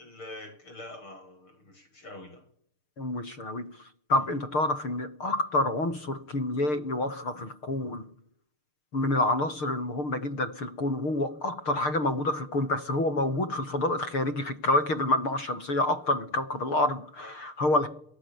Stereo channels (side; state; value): right; late; 6.6 ms